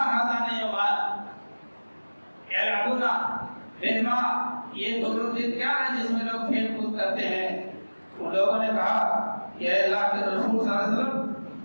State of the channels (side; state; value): both; inverted; correlation -1.00